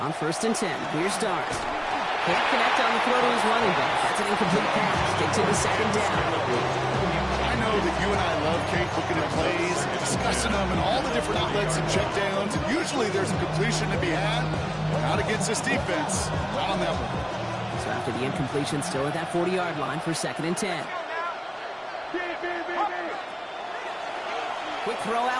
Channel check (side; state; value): both; identical; correlation 1.00